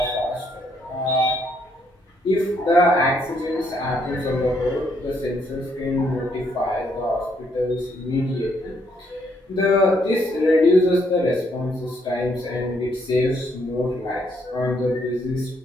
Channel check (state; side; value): normal; both; correlation 0.72